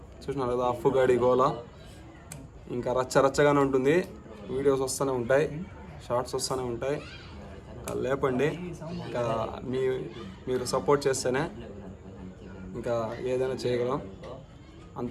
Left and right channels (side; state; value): both; identical; correlation 1.00